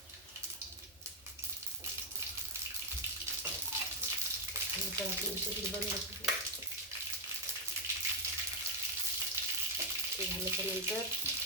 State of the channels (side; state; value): both; normal; correlation 0.04